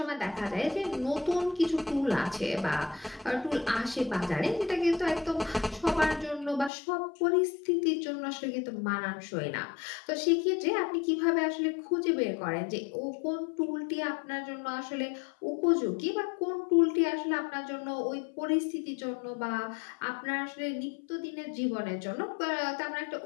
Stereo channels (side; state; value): right; drops out; at 6.7 s